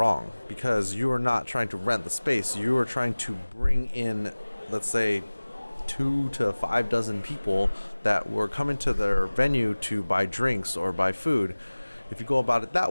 because you are not trying to rent the space. You are trying to bring in, let's say, 2 to 5 dozen people that were coming to their venue to buy drinks or buy food. If you go about it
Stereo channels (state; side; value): inverted; both; correlation -1.00